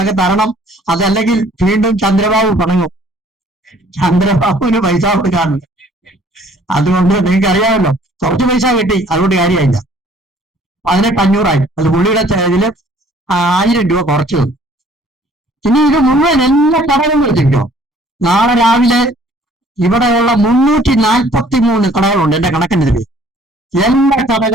തരണം. അതല്ലെങ്കിൽ വീണ്ടും ചന്ദ്രബാബു പണങ്ങും. ചന്ദ്രബാബുവിന് പൈസ കൊടുക്കാറുണ്ട്. അതുകൊണ്ട് നിങ്ങൾക്ക് അറിയാമല്ലോ, കുറച്ച് പൈസ കിട്ടി, അതുകൊണ്ട് കാര്യമായില്ല. 18,500 അത് പുള്ളിയുടെ ഇതില് 1000 രൂപ കുറച്ചു തന്നു. ഇനി ഇത് മുഴുവൻ എല്ലാ കടകളും വെച്ചിട്ടോ. നാളെ രാവിലെ ഇവിടെയുള്ള 343 കടകളുണ്ട് എന്റെ കണക്കിന്റെ പേര്. എല്ലാ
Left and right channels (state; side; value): normal; both; correlation 0.57